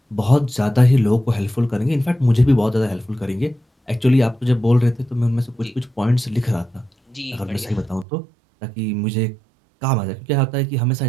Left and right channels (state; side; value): drops out; left; at 8.1 s